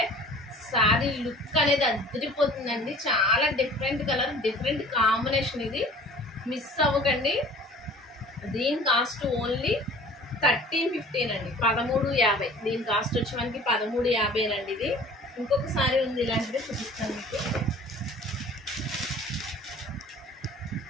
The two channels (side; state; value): both; normal; correlation 0.46